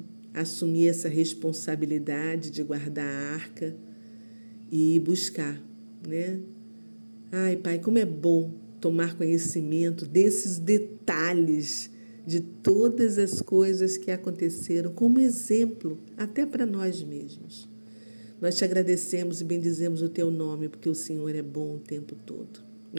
assumir essa responsabilidade de guardar a arca e buscar, Ai, Pai, como é bom tomar conhecimento desses detalhes de todas as coisas que aconteceram, como exemplo até para nós mesmos. Nós te agradecemos e bendizemos o teu nome, porque o Senhor é bom o tempo todo.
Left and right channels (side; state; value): both; inverted; correlation -1.00